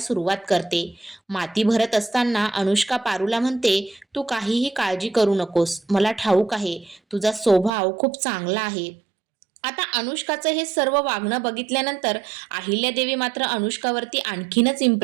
करते. माती भरत असताना अनुष्का पारूला म्हणते, तू काहीही काळजी करू नकोस, मला ठाऊक आहे तुझा स्वभाव खूप चांगला आहे. आता अनुष्काचं हे सर्व वागणं बघितल्यानंतर अहिल्यादेवी मात्र अनुष्कावरती आणखीनच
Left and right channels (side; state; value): left; drops out; at 7.7 s